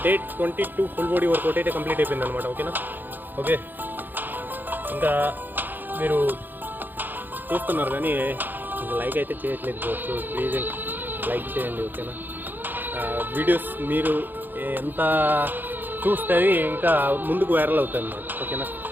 డేట్ 22 ఫుల్ బాడీ వర్కౌట్ అయితే కంప్లీట్ అయిపోయింది అనమాట. ఓకేనా? ఓకే, ఇంకా మీరు చూస్తున్నారు కానీ ఇంకా లైక్ అయితే చేయట్లేదు. సో ప్లీజ్ లైక్ చేయండి. ఓకేనా? వీడియోస్ మీరు ఎంత చూస్తే ఇంకా ముందుకు వైరల్ అవుతాయి అన్నమాట. ఓకేనా?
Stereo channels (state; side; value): late; left; 0.090 ms